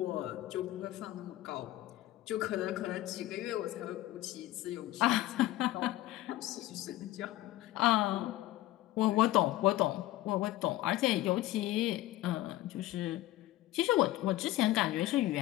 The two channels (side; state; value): right; quieter; 15.8 dB